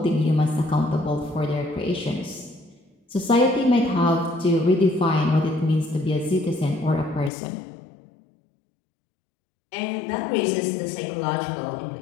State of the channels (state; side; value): drops out; right; at 7.3 s